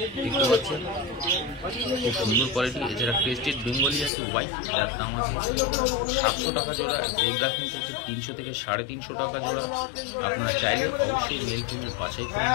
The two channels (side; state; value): right; drops out; at 4.1 s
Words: দেখতে পাচ্ছেন, খুব সুন্দর কোয়ালিটি। এছাড়া ক্রেস্টেড বেঙ্গলি আছে হোয়াইট, যার দাম আছে 700 টাকা জোড়া। জেব্রা ফিঞ্চ আছে 300 থেকে 350 টাকা জোড়া। আপনারা চাইলে অবশ্যই মেল ফিমেল বাছাই করে